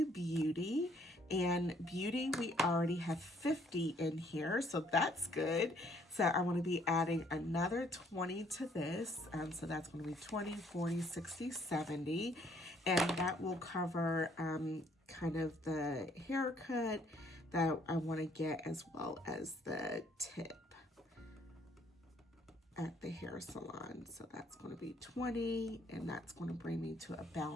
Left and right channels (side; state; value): both; normal; correlation 0.64